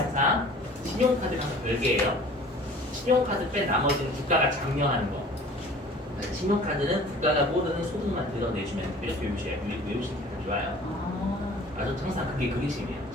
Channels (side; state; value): both; normal; correlation 0.47